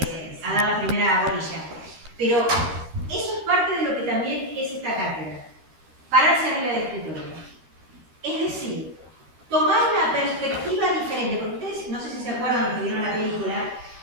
dar la primera bolilla. Pero eso es parte de lo que también es esta cátedra, pararse arriba del escritorio. Es decir, tomar una perspectiva diferente, porque ustedes, no sé si se acuerdan los que vieron la película,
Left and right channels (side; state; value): left; late; 13 ms